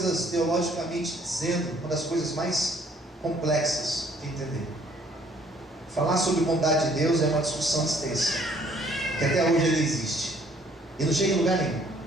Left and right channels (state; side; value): normal; both; correlation 0.61